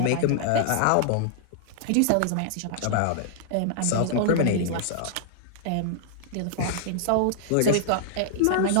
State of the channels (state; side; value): different; both; correlation -0.01